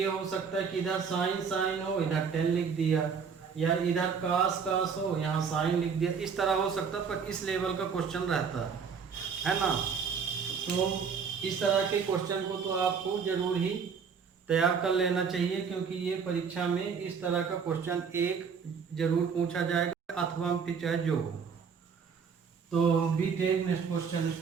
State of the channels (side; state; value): left; quieter; 6.1 dB